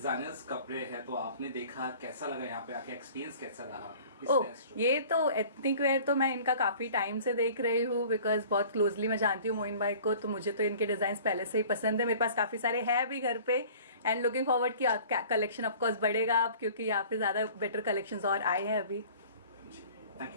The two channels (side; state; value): both; inverted; correlation -0.47